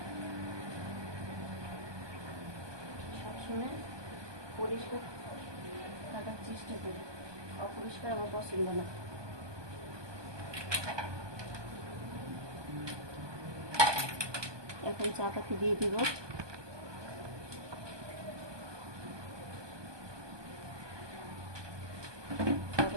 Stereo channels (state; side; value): late; left; 1.2 ms